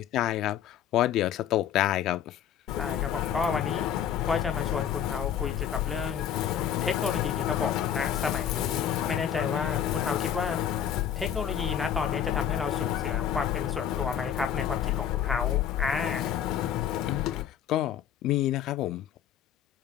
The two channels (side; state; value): right; quieter; 9.2 dB